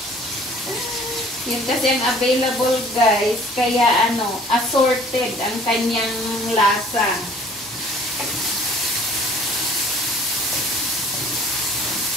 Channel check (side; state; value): both; normal; correlation 0.53